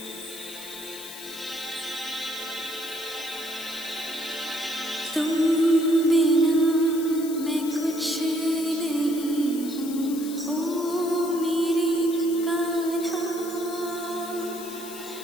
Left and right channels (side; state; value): left; noise; hiss, 13 dB below the sound